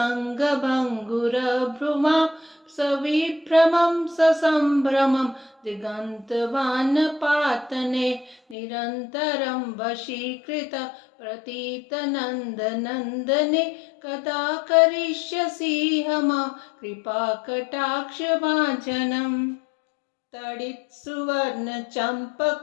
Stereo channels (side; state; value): right; drops out; at 8.6 s